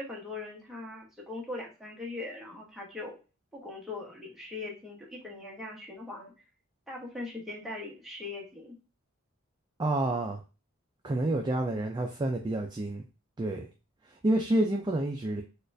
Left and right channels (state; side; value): normal; both; correlation 0.71